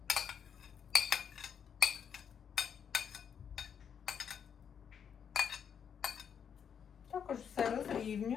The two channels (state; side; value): quieter; right; 7.7 dB